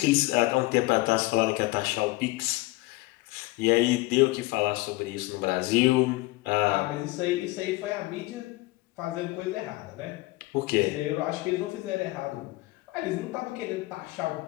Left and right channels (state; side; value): quieter; right; 21.0 dB